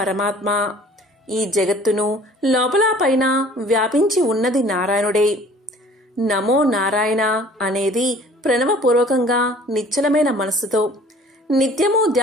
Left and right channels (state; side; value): normal; both; correlation 0.51